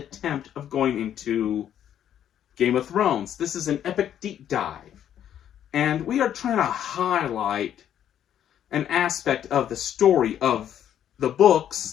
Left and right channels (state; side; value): quieter; right; 10.2 dB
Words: of going into Game of Thrones. This is an epic deep dive, and we are trying to highlight an aspect of the story of the